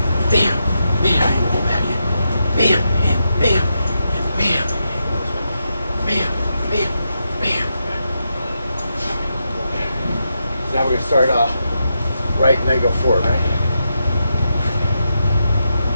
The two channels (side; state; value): both; inverted; correlation -0.85